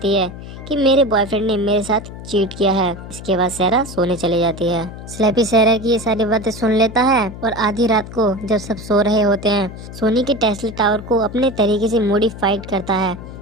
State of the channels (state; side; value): noise; left; hum, 12 dB below the sound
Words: है कि मेरे बॉयफ्रेंड ने मेरे साथ चीट किया है। इसके बाद सहरा सोने चली जाती है। स्लैपी सहरा की ये सारी बातें सुन लेता है और आधी रात को जब सब सो रहे होते हैं, सोनी के टेस्ला टावर को अपने तरीके से मॉडिफाइड करता है